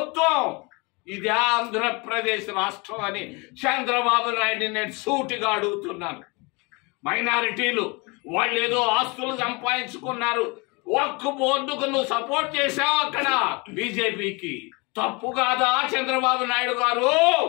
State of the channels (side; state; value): right; quieter; 28.2 dB